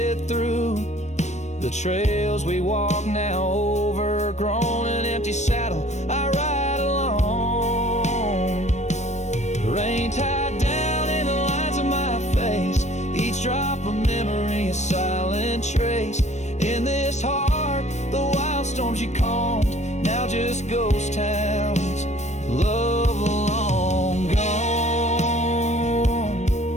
through. The trails we walk now overgrown, an empty saddle I ride alone. The rain tied down in the lines of my face, each drop of memory a silent trace. In this heart, the wild storms you calmed, now just ghost towns, love long gone.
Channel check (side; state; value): right; late; 0.34 ms